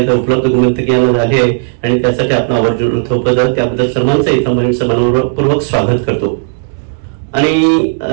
उपलब्ध गुणवंतकीयांना झाली आहे आणि त्यासाठी आपण आवर्जून थोपवत त्याबद्दल सर्वांचं इथं मी समानपूर्वक स्वागत करतो आणि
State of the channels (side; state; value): left; silent; digital silence